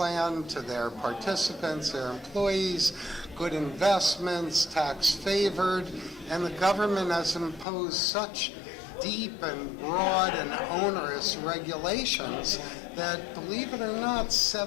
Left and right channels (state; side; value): drops out; right; at 7.7 s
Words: to their participants, their employees, good investments, tax favored, and the government has imposed such deep and broad and onerous regulations that, believe it or not,